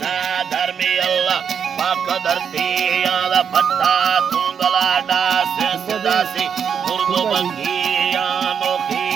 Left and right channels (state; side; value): quieter; left; 7.3 dB